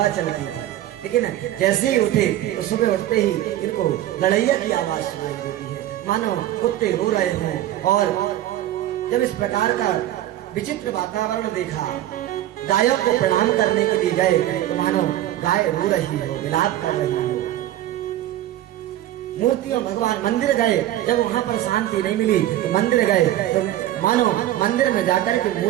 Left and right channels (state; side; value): quieter; left; 13.5 dB